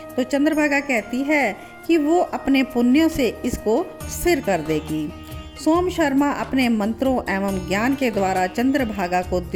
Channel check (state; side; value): identical; both; correlation 1.00